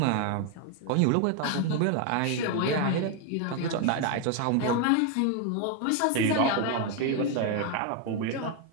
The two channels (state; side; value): different; both; correlation 0.01